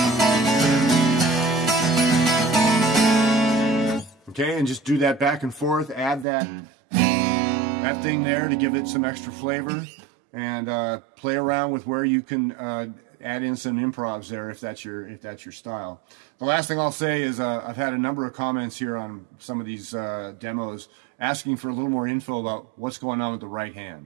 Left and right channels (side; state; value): left; drops out; at 6.2 s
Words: Okay, and just do that back and forth, add that thing there to give it some extra flavor, and play around with where you can add in some improvs there if that's your style. The last thing I'll say is I've had a number of comments here on some of these demos asking for a little more info about what's going on with the right